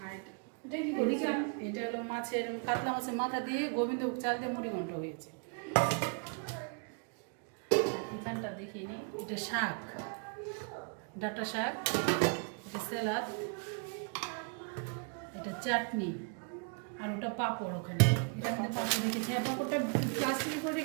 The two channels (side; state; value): left; quieter; 38.9 dB